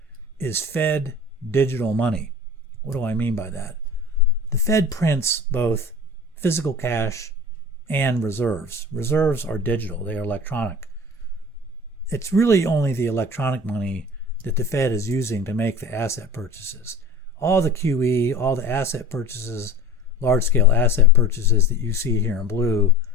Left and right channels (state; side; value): normal; both; correlation 0.38